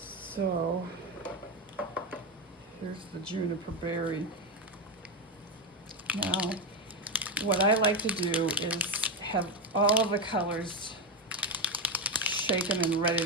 here's the Juniper Berry. Now, what I like to do is have all of the colors shaken and ready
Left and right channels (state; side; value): normal; both; correlation 0.12